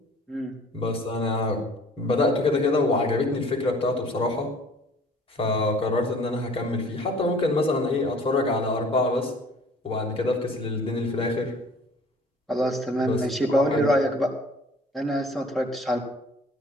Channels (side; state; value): both; normal; correlation 0.51